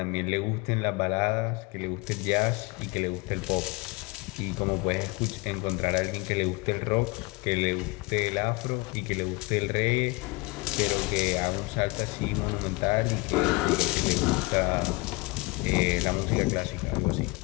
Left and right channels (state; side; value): quieter; right; 25.0 dB